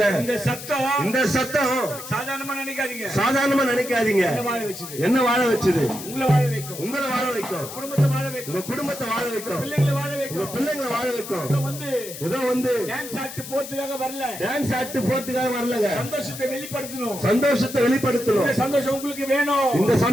இந்த சத்தம் சாதாரணமா நினைக்காதீங்க. என்ன வாழ வச்சது? உங்களை வாழ வைக்கும், குடும்பத்தை வாழ வைக்கும், உங்க குடும்பத்தை வாழ வைக்கும், பிள்ளைங்களை வாழ வைக்கும், பிள்ளைங்களை வாழ வைக்கும். ஏதோ டான்ஸ் ஆட்டு போறதுக்காக வரலங்க. சந்தோஷத்தை வெளிப்படுத்தணும். இந்த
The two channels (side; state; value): left; noise; hiss, 11 dB below the sound